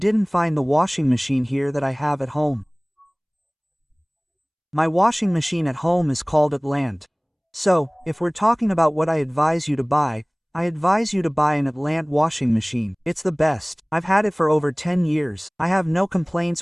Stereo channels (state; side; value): identical; both; correlation 1.00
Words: find the washing machine here that I have at home. My washing machine at home is called Atlant. So, if we're talking about what I advise you to buy, I advise you to buy an Atlant washing machine. It's the best. I've had it for over 10 years. I have no